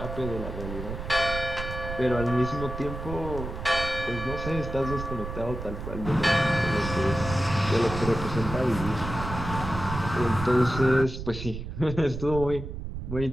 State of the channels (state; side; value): noise; right; rumble, 7 dB below the sound